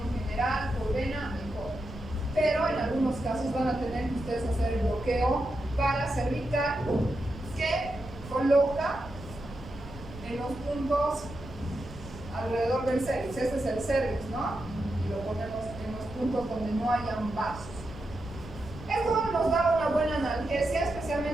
general, por vena, mejor. Pero en algunos casos van a tener que ustedes hacer el bloqueo paracervical que coloca en los puntos alrededor del cervix. Este es el cervix, ¿no? Y lo ponemos en los puntos donde no hayan vasos. Esto nos da una buena analgesia,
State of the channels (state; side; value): noise; right; rumble, 15 dB below the sound